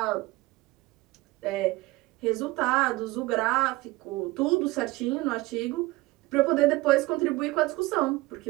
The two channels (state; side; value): quieter; left; 20.3 dB